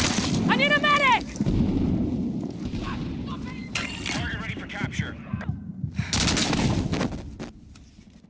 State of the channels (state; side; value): identical; both; correlation 1.00